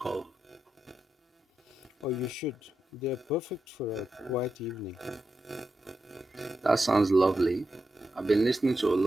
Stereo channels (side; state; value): both; normal; correlation 0.87